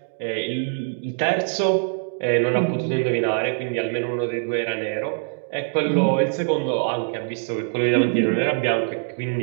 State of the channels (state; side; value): silent; left; digital silence